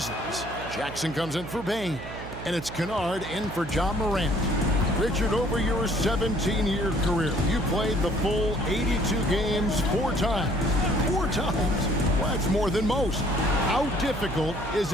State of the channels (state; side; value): noise; right; hum, 11 dB below the sound